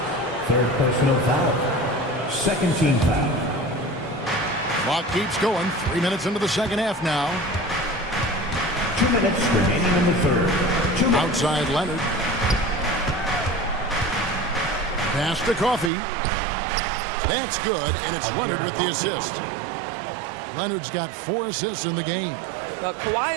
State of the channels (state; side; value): drops out; left; at 15.9 s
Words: third personal foul. Second team foul. Clock keeps going. 3 minutes into the second half now. 2 minutes remaining in the third. 2 minutes. Outside Leonard. Pass to Coffey. That's good, and it's Leonard with the assist. Leonard's got 4 assists in the game. Well,